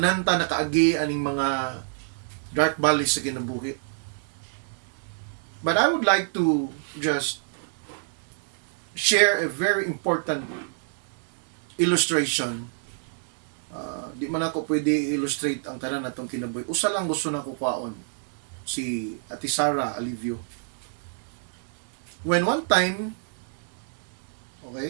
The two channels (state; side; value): silent; left; 60 dB below the other